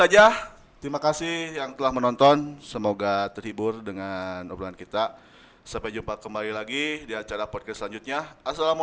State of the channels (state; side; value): identical; both; correlation 1.00